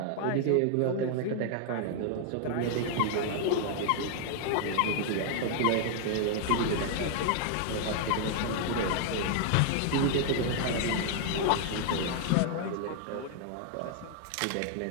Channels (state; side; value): different; both; correlation 0.00